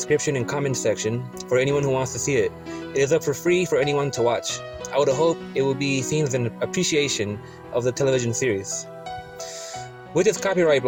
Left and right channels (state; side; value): identical; both; correlation 1.00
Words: and comment section for anyone who wants to see it. It is up for free for anyone to watch. I would hope it will be seen as an appreciation of the television series. With this copyright